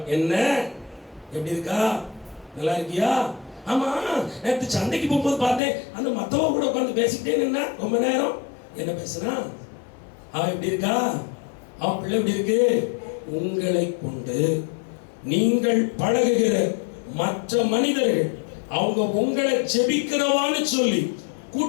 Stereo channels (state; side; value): drops out; right; at 5.6 s